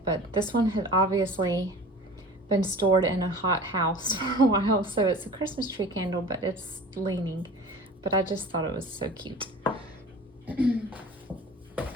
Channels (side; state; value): both; normal; correlation 0.40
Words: but this one had obviously been stored in a hot house for a while, so it's a Christmas tree candle, but it's leaning. But I just thought it was so cute.